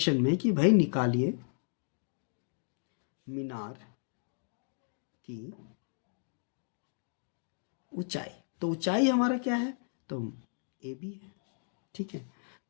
में कि भाई निकालिए मीनार की ऊंचाई। तो ऊंचाई हमारा क्या है, तो AB है, ठीक है।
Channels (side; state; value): right; silent; digital silence